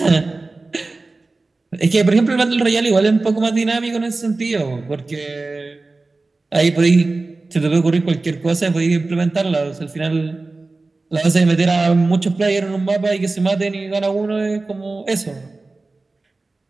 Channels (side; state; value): left; quieter; 3.4 dB